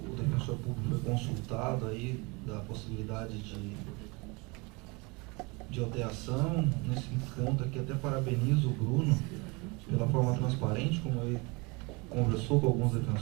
defensor público foi consultado aí da possibilidade de alteração. Nesse ponto aqui, até parabenizo o Bruno pela forma transparente como ele conversou com alguns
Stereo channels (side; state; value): left; quieter; 27.6 dB